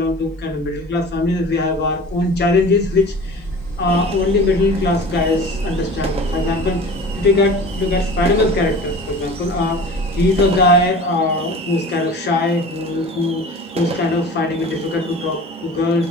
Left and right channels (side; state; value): both; normal; correlation 0.39